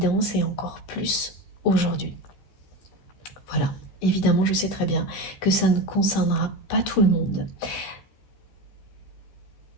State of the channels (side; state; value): right; late; 15 ms